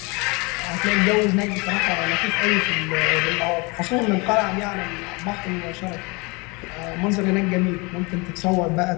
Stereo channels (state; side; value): quieter; right; 27.7 dB